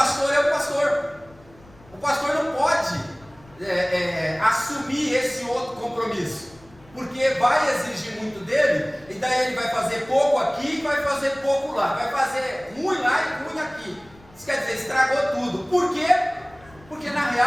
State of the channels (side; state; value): left; noise; rumble, 26 dB below the sound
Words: é o pastor não pode assumir esse outro compromisso. porque vai exigir muito dele, e daí ele vai fazer pouco aqui e vai fazer pouco lá, vai fazer ruim lá e ruim aqui. Isso quer dizer, estragou tudo. Por quê? Porque na